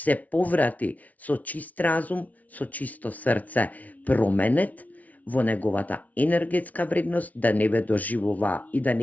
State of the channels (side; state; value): right; late; 0.072 ms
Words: поврати со чист разум, со чисто срце променет во неговата енергетска вредност, да не ве доживува и да